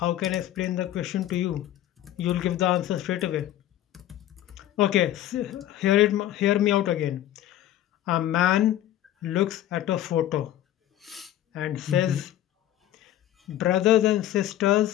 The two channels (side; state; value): right; quieter; 12.8 dB